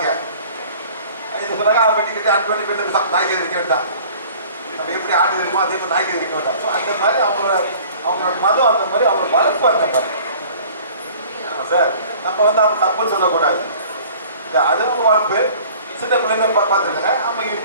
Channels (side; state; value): both; inverted; correlation -0.48